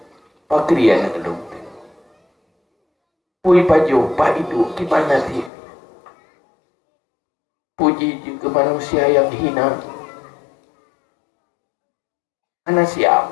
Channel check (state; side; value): drops out; right; at 5.5 s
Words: pakri anak lu pui pajo pak itu gimana sih puji ke manusia yang hina anak siap